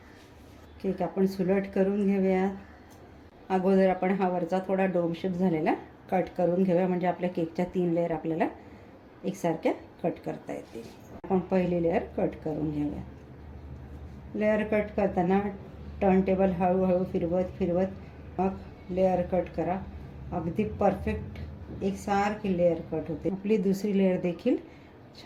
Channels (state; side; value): identical; both; correlation 1.00